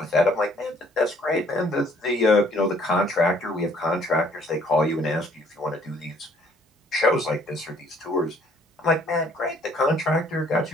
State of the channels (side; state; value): both; normal; correlation 0.61